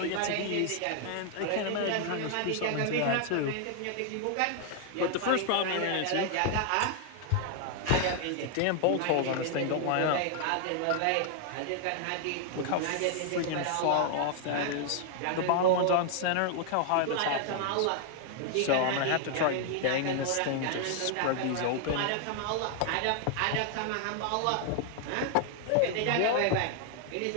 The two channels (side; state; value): both; different; correlation 0.00